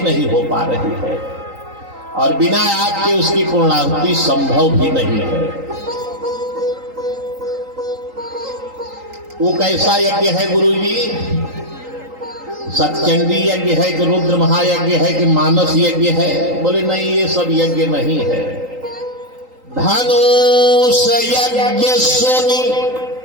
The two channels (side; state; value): left; late; 3.8 ms